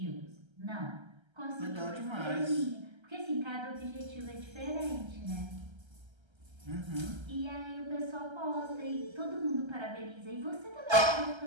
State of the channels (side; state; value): left; late; 1.3 ms